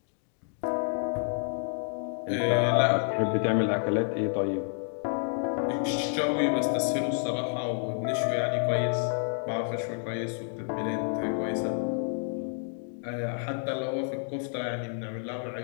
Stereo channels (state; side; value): silent; right; 58 dB below the other